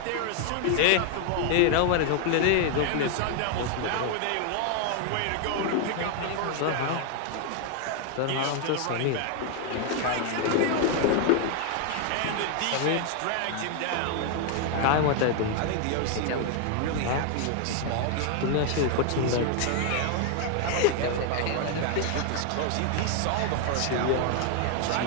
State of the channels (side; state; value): both; different; correlation 0.00